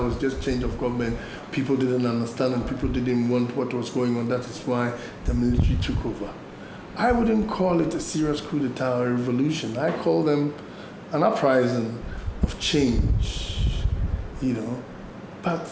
just change of government. People didn't understand and people didn't want what was going on. That is why the military took over. I wouldn't call it a serious coup d'etat or a revolution. I call them an uprising of change, But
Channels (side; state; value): both; identical; correlation 1.00